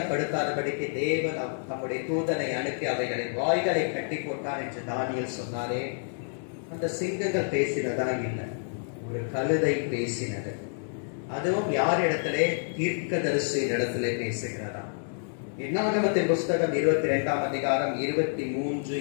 தேவன் தம்முடைய தூதனை அனுப்பி அவைகளின் வாய்களை கட்டி போட்டார் என்று தானியேல் சொன்னாரே, அந்த சிங்கங்கள் பேசினதா இல்லை. ஒரு கழுதை பேசினது. அதுவும் யார் இடத்திலே? தீர்க்கதரிசியின் இடத்திலே பேசுகிறதா. என்னாகமத்தின் புஸ்தகம் 22ஆம் அதிகாரம் 23,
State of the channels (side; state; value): right; silent; digital silence